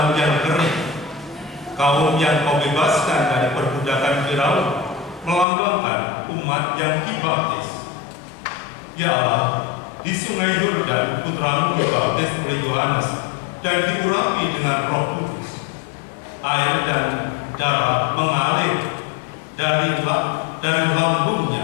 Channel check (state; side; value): drops out; right; at 5.5 s